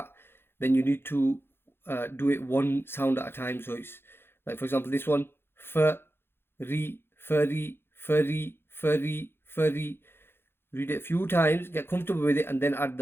then you need to do it one sound at a time. So it's like, for example, this one, ri, furry, furry, furry, furry. Read it a few times, get comfortable with it, and then add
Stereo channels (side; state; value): right; late; 0.11 ms